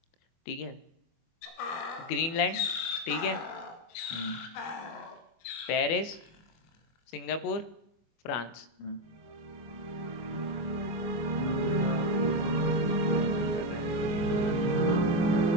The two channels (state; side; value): late; right; 24 ms